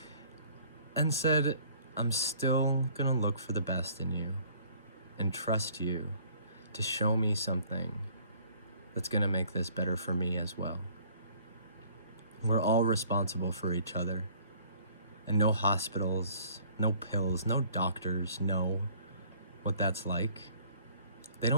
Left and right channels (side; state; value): both; inverted; correlation -0.57